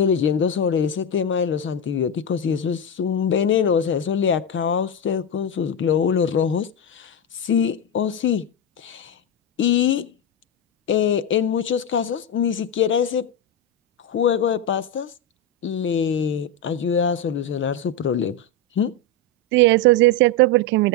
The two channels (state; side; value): normal; both; correlation 0.09